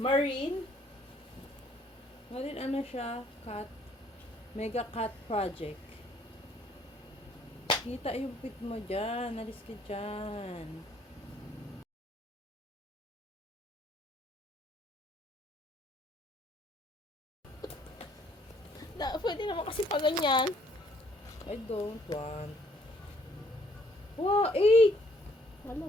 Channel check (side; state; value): both; normal; correlation 0.64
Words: Ano siya? Cat. Mega Cat Project. Kita yung pit mo dyan. Alis ka dyan. Pwede naman kasi pa ganyan. I don't want. Wow, 8!